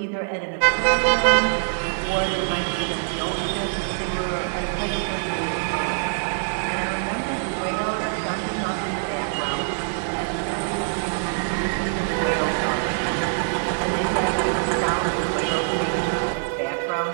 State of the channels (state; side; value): silent; left; 63 dB below the other